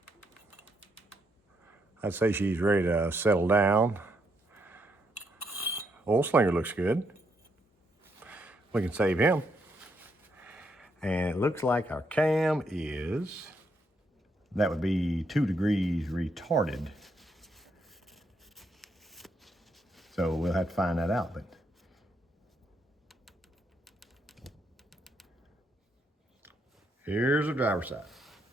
I'd say she's ready to settle down. Oil slinger looks good. We can save him. And it looks like our cam is, that would be 2 degrees retarded. So we'll have to find that out, but here's the driver's side.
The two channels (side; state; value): both; normal; correlation 0.77